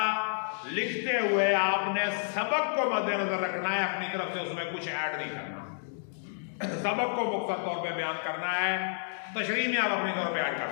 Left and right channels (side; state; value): right; silent; digital silence